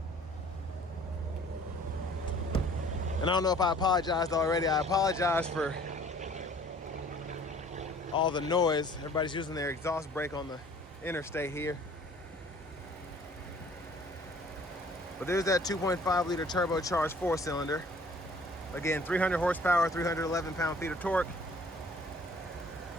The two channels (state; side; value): normal; both; correlation 0.53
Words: And I don't know if I apologized already. I apologize for all the noise. Everybody's using their exhaust brake on the interstate here. But there's that 2.5 liter turbocharged 4-cylinder. Again, 300 horsepower, 311 pound-feet of torque.